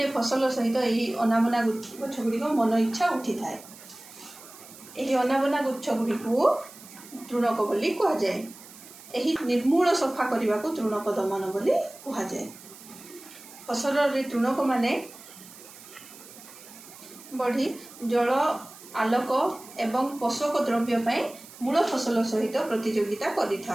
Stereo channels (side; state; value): right; noise; hiss, 19 dB below the sound